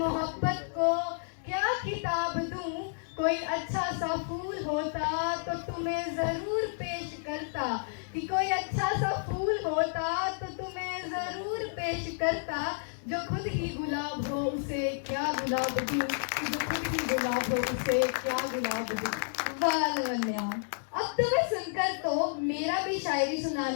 को क्या किताब दूं, कोई अच्छा सा फूल होता तो तुम्हें जरूर पेश करता, कि कोई अच्छा सा फूल होता तो तुम्हें जरूर पेश करता, जो खुद ही गुलाब हो उसे क्या गुलाब दूं, कि जो खुद ही गुलाब हो उसे क्या गुलाब दूं। वाह लवन्या, अब तुम्हें सुनकर तो मेरा भी शायरी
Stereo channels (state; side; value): silent; right; digital silence